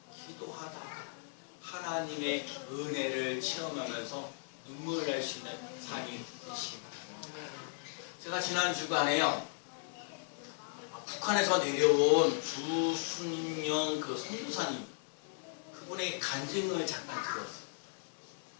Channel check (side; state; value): right; silent; digital silence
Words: 기도하다 하나님의 은혜를 체험하면서 눈물을 낼 수 있는 삶이 되시기 바랍니다. 제가 지난 주간에요 북한에서 내려온 주순영 그 선교사님 그분의 간증을 잠깐 들었어요.